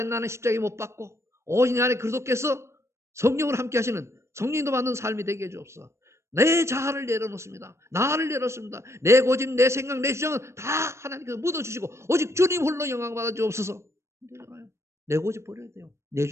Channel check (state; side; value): late; left; 0.13 ms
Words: 나는 십자가에 못 박고 오직 내 안에 그리스도께서 성령을 함께 하시는 성령도 받는 삶이 되게 해주옵소서. 내 자아를 내려놓습니다. 나를 내려놓습니다. 내 고집, 내 생각, 내 주장은 다 하나님께서 묻어주시고 오직 주님 홀로 영광 받아 주옵소서. 내 고집 버려야 돼요. 내